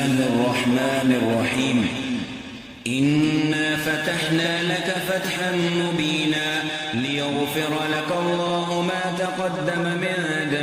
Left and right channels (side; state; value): both; identical; correlation 1.00